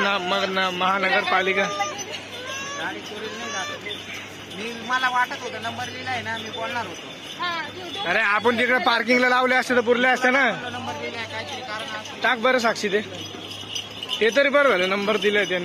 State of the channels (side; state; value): both; identical; correlation 1.00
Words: मला वाटत होतं नंबर लिहिलाय ना, मी बोलणार होतो. अरे आपण तिकडे पार्किंगला लावले असते तर पुरले असते ना. नंबर लिहिलाय काहीतरी कारण टाक बरं साक्षी ते तरी बरं झालं नंबर दिलाय